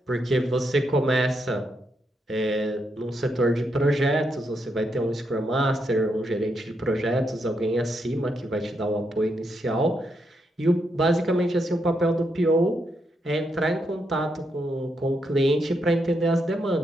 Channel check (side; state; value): both; normal; correlation 0.80